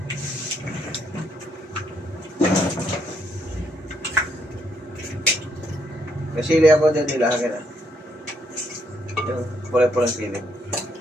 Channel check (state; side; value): normal; both; correlation 0.73